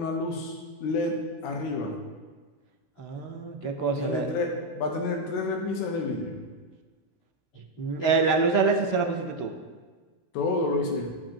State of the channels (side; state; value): right; late; 16 ms